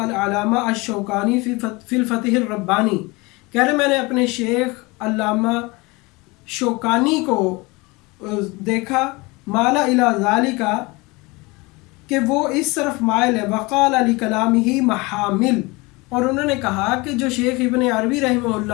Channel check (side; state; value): right; quieter; 24.6 dB